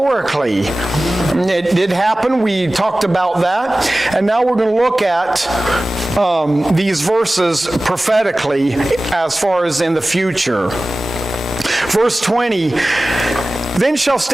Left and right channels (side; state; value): both; normal; correlation 0.97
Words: It did happen. We talked about that. And now we're going to look at these verses prophetically as far as in the future. Verse 20, then shall